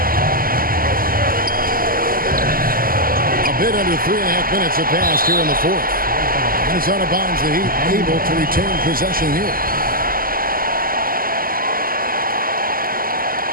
A bit under 3.5 minutes have passed here in the fourth. And it's out of bounds. The Heat able to retain possession here.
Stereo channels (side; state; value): left; late; 0.42 ms